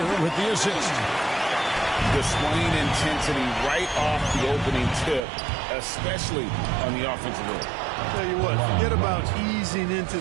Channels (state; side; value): drops out; left; at 5.2 s